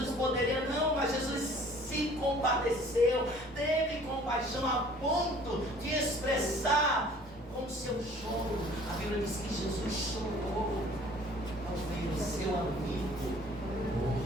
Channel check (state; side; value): normal; both; correlation 0.52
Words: poderia, não, mas Jesus se compadeceu, teve compaixão a ponto de expressar com o seu choro. A Bíblia diz que Jesus chorou ao ver o seu amigo